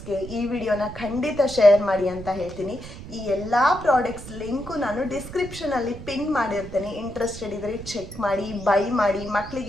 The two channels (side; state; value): right; noise; rumble, 13 dB below the sound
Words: ಈ ವಿಡಿಯೋನ ಖಂಡಿತ ಶೇರ್ ಮಾಡಿ ಅಂತ ಹೇಳ್ತೀನಿ. ಈ ಎಲ್ಲ ಪ್ರಾಡಕ್ಟ್ಸ್ ಲಿಂಕು ನಾನು ಡಿಸ್ಕ್ರಿಪ್ಷನಲ್ಲಿ ಪಿನ್ ಮಾಡಿರ್ತೇನೆ. ಇಂಟ್ರೆಸ್ಟೆಡ್ ಇದ್ದರೆ ಚೆಕ್ ಮಾಡಿ, ಬೈ ಮಾಡಿ,